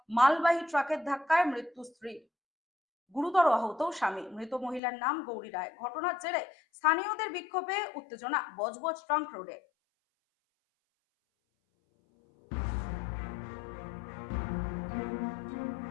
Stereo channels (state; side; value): drops out; right; at 4.8 s